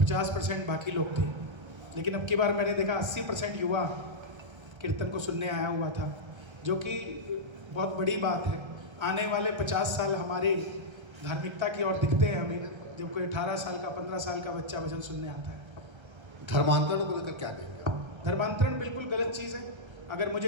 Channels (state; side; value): late; left; 1.3 ms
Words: बाकी लोग थे, लेकिन अब की बार मैंने देखा 80% युवा कीर्तन को सुनने आया हुआ था, जो कि बहुत बड़ी बात है। आने वाले 50 साल हमारे धार्मिकता की ओर दिखते हैं हमें, जब कोई 18 साल का 15 साल का बच्चा भजन सुनने आता है। धर्मांतरण को लेकर क्या कहेंगे? धर्मांतरण बिल्कुल गलत चीज़ है। अगर मुझे